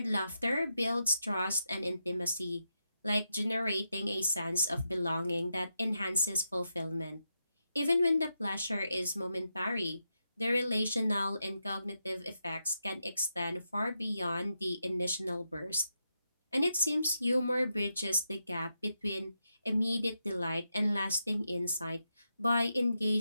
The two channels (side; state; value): both; inverted; correlation -0.85